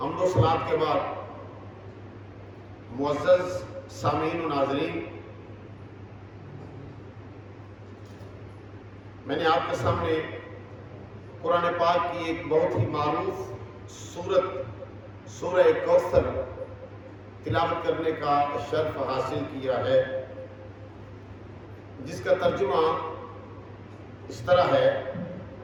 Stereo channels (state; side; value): identical; both; correlation 1.00